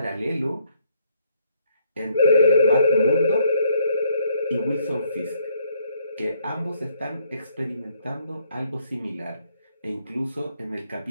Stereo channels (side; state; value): both; inverted; correlation -0.68